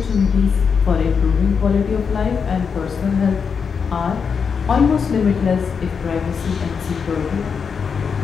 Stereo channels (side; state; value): right; quieter; 6.1 dB